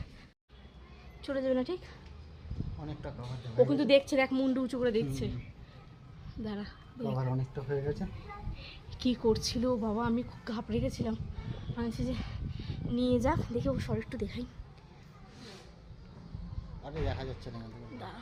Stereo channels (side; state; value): both; identical; correlation 1.00